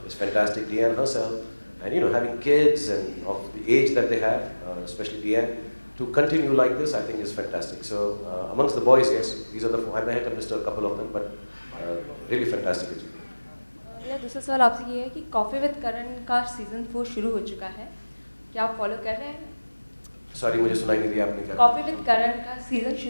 is fantastic, Deanne herself, and having kids and of the age that they have, especially Deanne, to continue like this, I think is fantastic. So amongst the boys, yes, these are the four. I may have missed a couple of them, but really fantastic achievement. मेरा दूसरा सवाल आपसे ये है कि coffee with करण का season 4 शुरू हो चुका है, क्या आप फॉलो कर रहे हैं? Sorry, मुझे सुनाई नहीं दिया आपने क्या? कॉफ़ी विद करण का सीजन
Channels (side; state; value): both; inverted; correlation -1.00